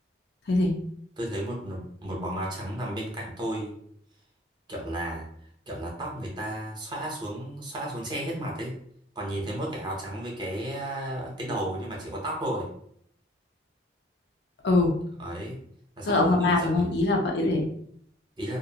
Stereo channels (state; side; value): normal; both; correlation 0.52